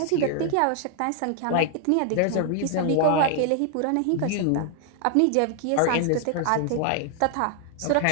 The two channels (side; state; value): both; different; correlation 0.00